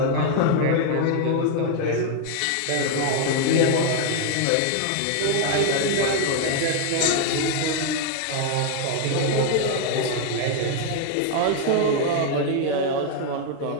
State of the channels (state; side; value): different; both; correlation 0.00